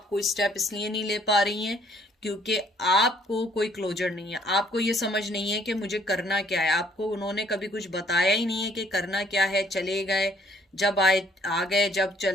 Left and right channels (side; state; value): both; normal; correlation 0.63